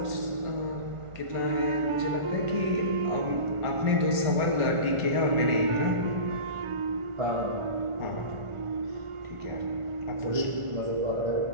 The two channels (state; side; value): late; left; 1.5 ms